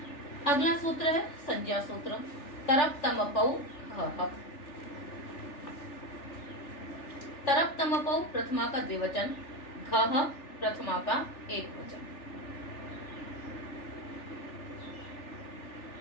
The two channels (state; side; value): late; right; 3.4 ms